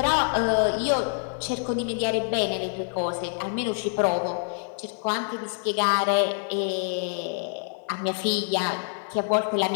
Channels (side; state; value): right; silent; digital silence